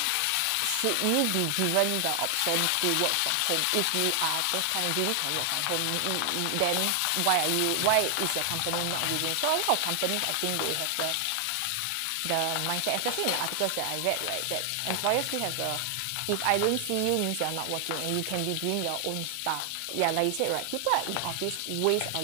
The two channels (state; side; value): different; both; correlation 0.00